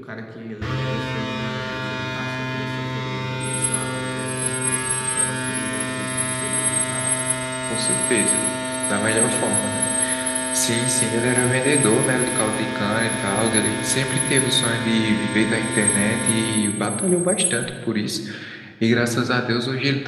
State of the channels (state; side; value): identical; both; correlation 1.00